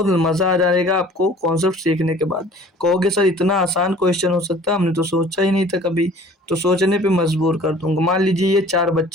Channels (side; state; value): both; normal; correlation 0.49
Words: मज़ा आ जाएगा आपको कॉन्सेप्ट सीखने के बाद। कहोगे सर इतना आसान क्वेश्चन हो सकता है, हमने तो सोचा ही नहीं था कभी। तो सोचने पे मजबूर कर दूंगा। मान लीजिए ये 4